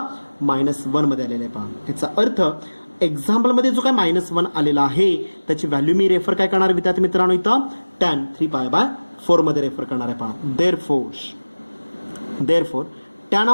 -1 मध्ये आलेले आहे पहा. याचा अर्थ एक्झाम्पलमध्ये जो काय -1 आलेला आहे त्याची व्हॅल्यू मी रेफर काय करणार विद्यार्थी मित्रांनो इथं टॅन 3 पाय बाय 4 मध्ये रेफर करणार आहे पहा. Therefore tan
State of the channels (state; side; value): inverted; both; correlation -1.00